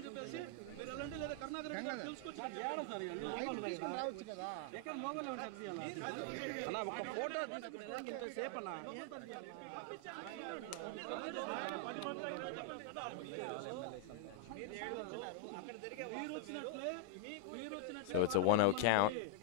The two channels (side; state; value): both; different; correlation 0.00